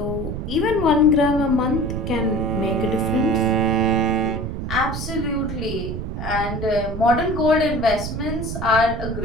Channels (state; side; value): noise; right; rumble, 5 dB below the sound